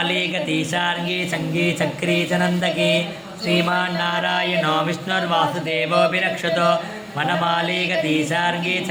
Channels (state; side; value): identical; both; correlation 1.00